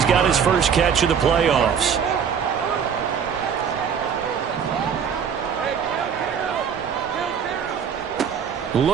got his first catch of the playoffs.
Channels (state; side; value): quieter; left; 7.3 dB